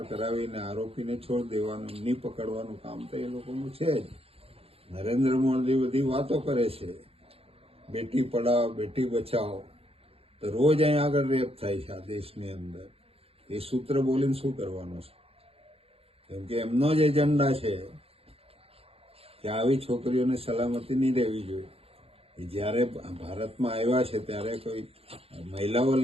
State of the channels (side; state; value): left; late; 0.28 ms